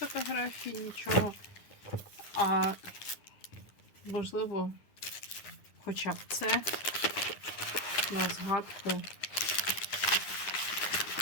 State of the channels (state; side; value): late; right; 9.8 ms